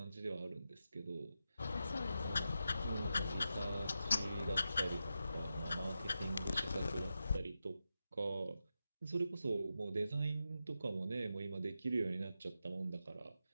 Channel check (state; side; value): inverted; both; correlation -0.89